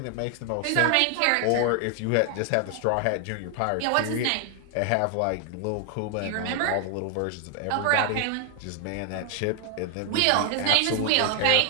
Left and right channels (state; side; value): different; both; correlation 0.00